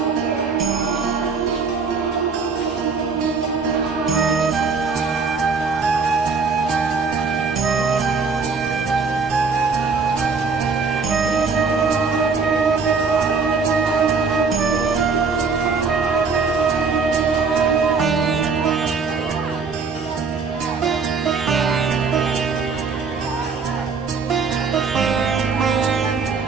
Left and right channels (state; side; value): quieter; left; 4.9 dB